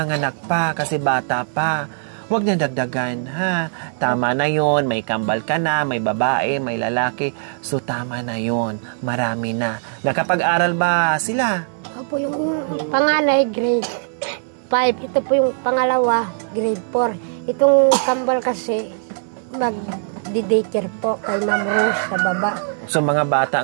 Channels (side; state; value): left; silent; 65 dB below the other